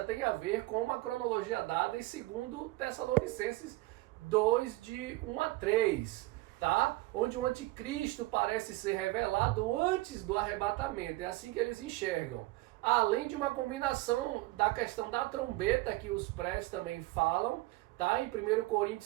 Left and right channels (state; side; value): quieter; left; 20.0 dB